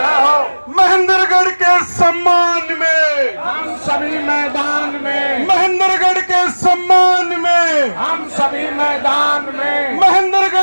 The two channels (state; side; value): inverted; both; correlation -1.00